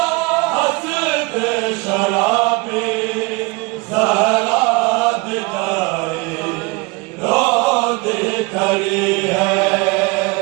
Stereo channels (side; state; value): left; quieter; 26.8 dB